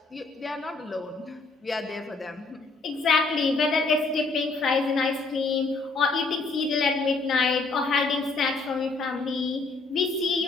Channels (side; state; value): right; quieter; 3.8 dB